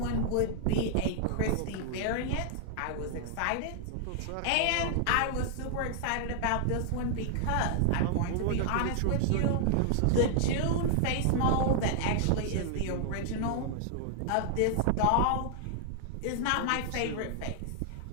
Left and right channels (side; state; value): both; different; correlation -0.01